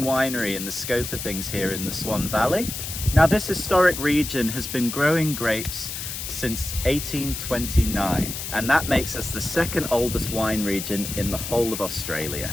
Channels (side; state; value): left; noise; hiss, 6 dB below the sound